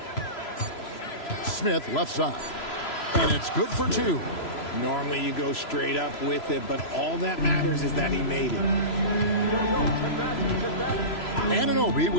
Smith left side. And it's good for 2. Normally you go straight up with it, but all that matters is that he made it. Anunoby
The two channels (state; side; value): late; right; 3.0 ms